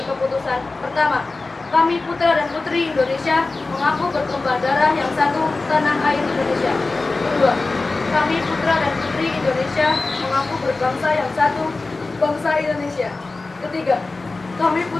keputusan. Pertama, kami putra dan putri Indonesia mengaku bertumpah darah yang satu tanah air Indonesia. Kedua, kami putra dan putri Indonesia mengaku berbangsa yang satu bangsa Indonesia. Ketiga, kami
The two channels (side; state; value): right; quieter; 3.5 dB